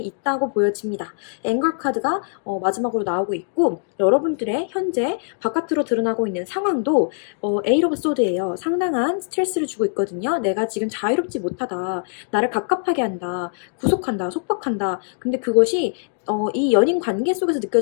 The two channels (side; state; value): right; silent; 58 dB below the other